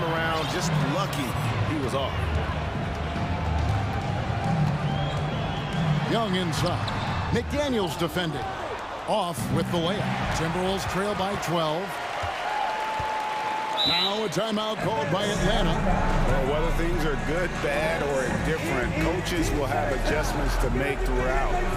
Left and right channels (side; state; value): both; identical; correlation 1.00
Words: around, just lucky he was off. Young inside. McDaniels defending. Off with the layup. Timberwolves trail by 12. Now a timeout called by Atlanta. Well, whether things are good, bad, or indifferent, coaches will have adjustments to make throughout